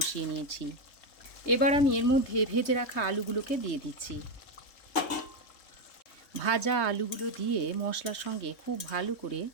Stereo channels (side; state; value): right; late; 3.2 ms